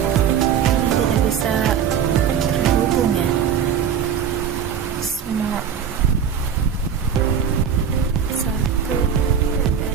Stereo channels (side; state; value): left; quieter; 8.0 dB